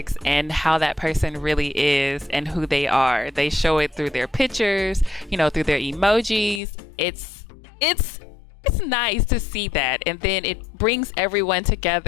and how that person really is and who they are. They show it through their pictures, through their emojis. It's it's nice to see that, and then it brings everyone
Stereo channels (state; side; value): drops out; right; at 6.6 s